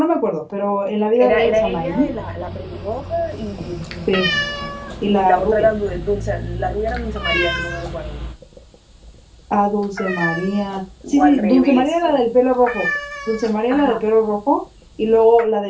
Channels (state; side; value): identical; both; correlation 1.00